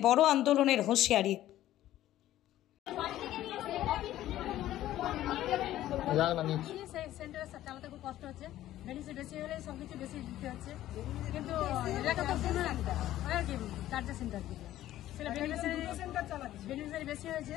বড় আন্দোলনের হুঁশিয়ারি। চালাতে খুব কষ্ট হচ্ছে, বেনিফিট বেশি হলে সবকিছু বেশি দিতে হচ্ছে, কিন্তু এলাকা তো শুনে রাখতে আর কি চার্জার সেন্টার থেকে সেটা বেনিফিট বেশি হয়েছে,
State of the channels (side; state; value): right; quieter; 13.7 dB